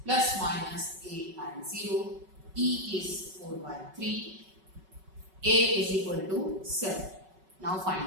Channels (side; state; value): left; late; 5.3 ms